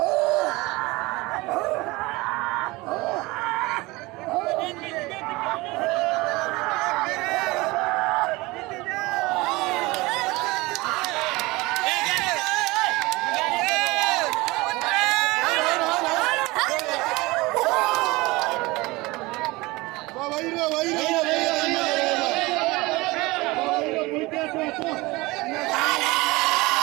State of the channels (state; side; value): quieter; left; 22.2 dB